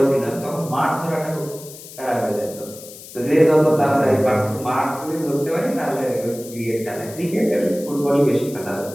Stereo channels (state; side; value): noise; left; hiss, 16 dB below the sound